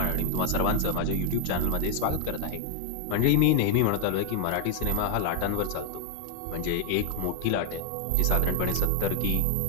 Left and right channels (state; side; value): different; both; correlation 0.00